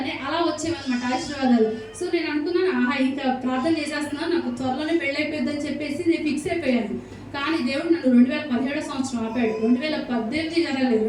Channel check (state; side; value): identical; both; correlation 1.00